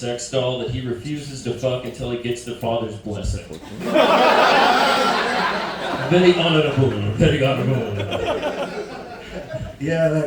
doll that he refuses to fuck until he gets the father's blessing. Very honorable. Very honorable. Yeah,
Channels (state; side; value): identical; both; correlation 1.00